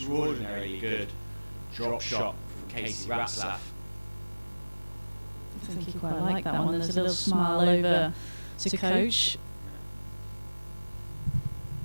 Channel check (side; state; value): both; inverted; correlation -1.00